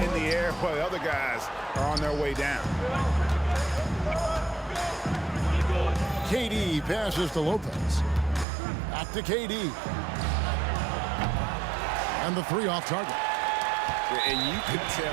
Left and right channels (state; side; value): drops out; left; at 8.5 s